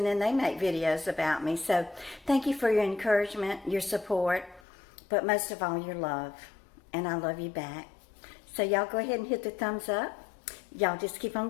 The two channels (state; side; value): drops out; right; at 4.6 s